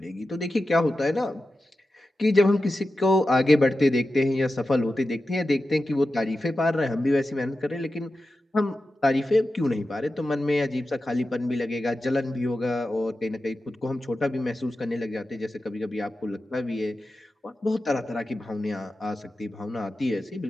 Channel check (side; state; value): both; normal; correlation 0.92